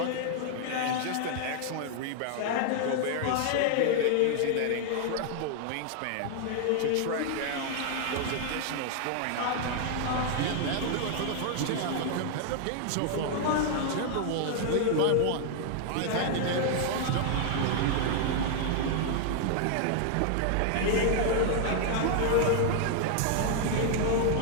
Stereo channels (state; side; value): different; both; correlation 0.00